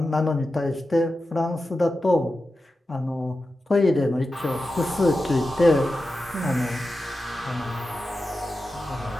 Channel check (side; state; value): both; normal; correlation 0.92